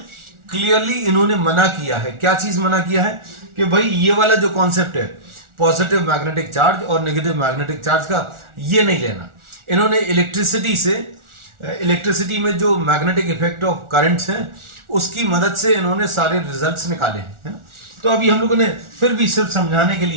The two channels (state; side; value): late; left; 1.4 ms